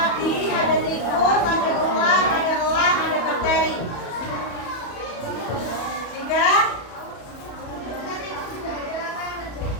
ada tikus, ada ular, ada elang, ada bakteri. Jika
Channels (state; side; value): late; right; 34 ms